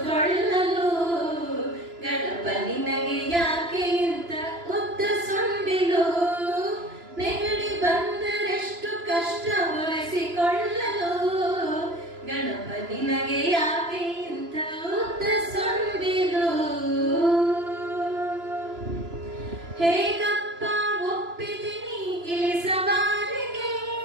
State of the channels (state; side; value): late; left; 2.9 ms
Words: ಗಣಪ ನಿನಗೆ ಯಾಕೆ ಇಂಥ ಉದ್ದ ಸೊಂಡಿಲು ನೆಗಡಿ ಬಂದರೆಷ್ಟು ಕಷ್ಟ ಒರೆಸಿಕೊಳ್ಳಲು ಗಣಪ ನಿನಗೆ ಯಾಕೆ ಇಂಥ ಉದ್ದ ಸೊಂಡಿಲು ಹೇಗಪ್ಪ ಒಪ್ಪಿದ್ದೀನಿ ಇಳಿಸವಾರಿಗೆ